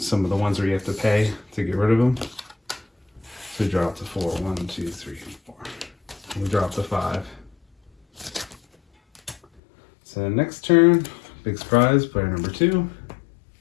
of the ones where you have to pay to get rid of them. So we drop to 4. 1, 2, 3, 4. We drop to 5. So next turn, big surprise, player number 2.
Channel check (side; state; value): right; drops out; at 9.6 s